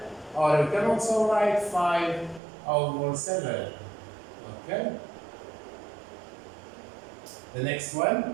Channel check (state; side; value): drops out; left; at 2.4 s